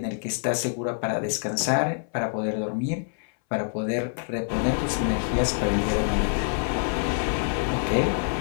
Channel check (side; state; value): right; silent; 61 dB below the other